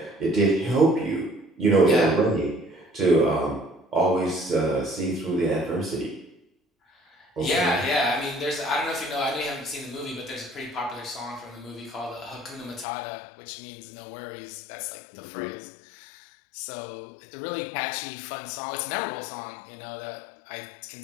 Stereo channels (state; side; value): drops out; right; at 12.9 s